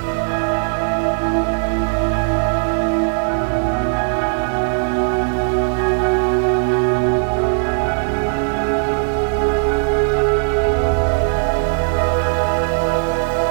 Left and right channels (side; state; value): left; silent; 63 dB below the other